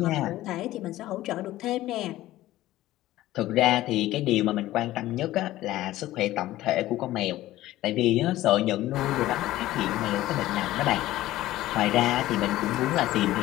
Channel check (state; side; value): quieter; right; 15.6 dB